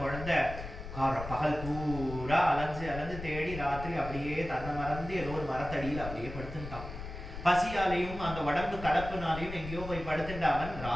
குழந்தை பகல் பூரா அலைஞ்சு தேடி ராத்திரி அப்படியே தன்னை மறந்து ஏதோ ஒரு மரத்தடியில் அப்படியே படுத்துட்டான். பசியாலையும் அந்த உடம்பு கலப்புனாலையும் எங்கேயோ போய் படுத்துட்ட அவன்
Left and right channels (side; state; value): left; noise; rumble, 10 dB below the sound